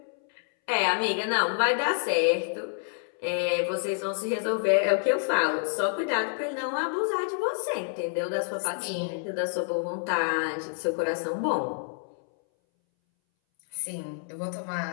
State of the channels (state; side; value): silent; right; 59 dB below the other